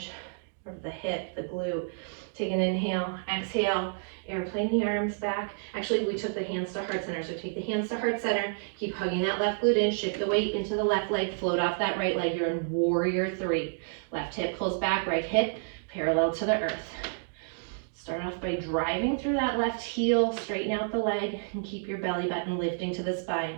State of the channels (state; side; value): silent; left; digital silence